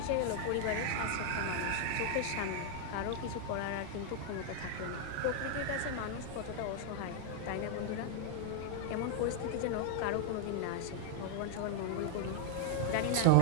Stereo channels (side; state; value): both; different; correlation 0.00